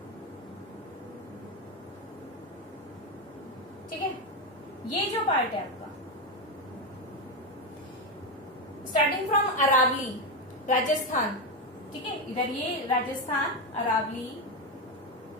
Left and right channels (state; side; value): normal; both; correlation 0.10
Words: ठीक है, ये जो पार्ट है आपका स्टार्टिंग फ्रॉम अरावली राजस्थान, ठीक है, इधर ये राजस्थान अरावली,